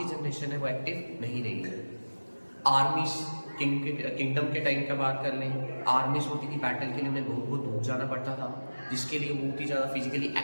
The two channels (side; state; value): both; inverted; correlation -1.00